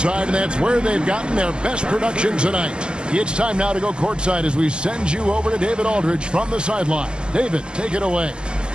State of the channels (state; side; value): late; left; 0.052 ms